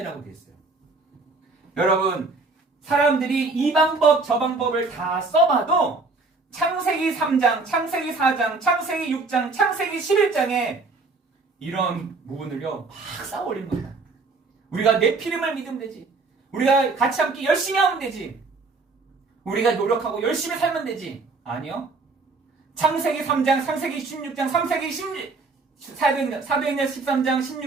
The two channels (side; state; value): left; quieter; 3.9 dB